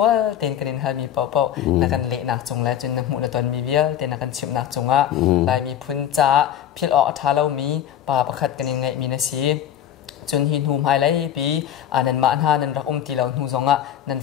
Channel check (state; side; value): quieter; right; 10.4 dB